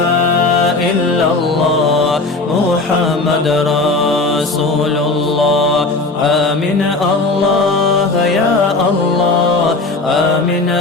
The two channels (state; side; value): quieter; right; 3.4 dB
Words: إلا الله محمد رسول الله آمين الله يا الله آمين